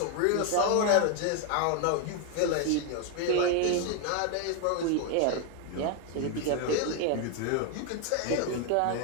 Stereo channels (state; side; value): different; both; correlation 0.01